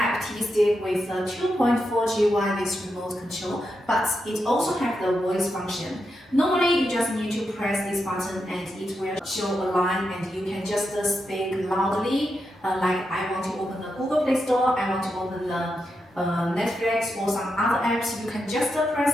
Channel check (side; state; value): both; normal; correlation 0.86